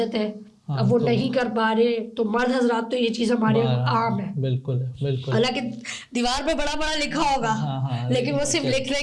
ہے، اب وہ نہیں کر پا رہے، تو مرد حضرات تو یہ چیز ہمارے عام ہے. بالکل بالکل. حالانکہ دیوار پہ بڑا بڑا لکھا ہوگا لیکن وہ صرف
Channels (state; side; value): identical; both; correlation 1.00